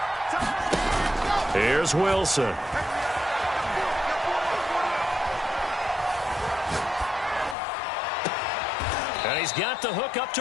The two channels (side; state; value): right; drops out; at 7.6 s